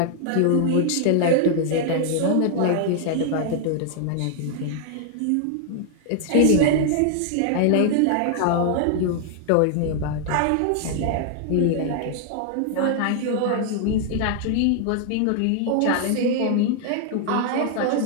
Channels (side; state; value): both; different; correlation 0.00